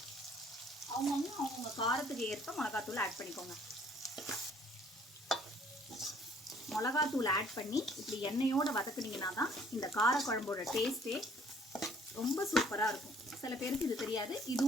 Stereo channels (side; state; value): both; normal; correlation 0.59